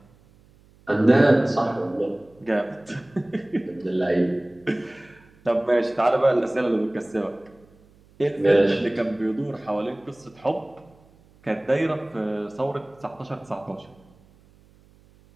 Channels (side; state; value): right; noise; hum, 29 dB below the sound